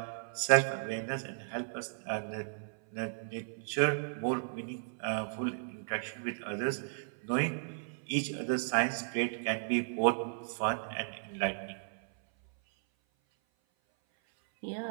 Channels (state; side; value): silent; left; 55 dB below the other